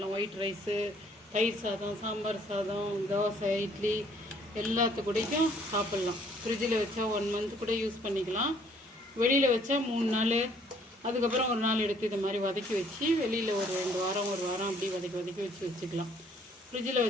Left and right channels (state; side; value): normal; both; correlation 0.61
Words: ஒயிட் ரைஸு, தயிர் சாதம், சாம்பார் சாதம், தோசை, இட்லி எல்லாத்துக்கூடையும் சாப்பிட்லாம். ஃப்ரிட்ஜில் வச்சா 1 மந்த் கூட யூஸ் பண்ணிக்கலாம். வெளியில் வச்சா 3 நாள், அதுக்கப்புறம் ஒரு நாள் எடுத்து இது மாதிரி வதக்கி வச்சு வெளியில் ஒரு 2 வாரம், 1 வாரம் அப்படி வதக்கி வச்சுக்கலாம். ஃப்ரிட்ஜில்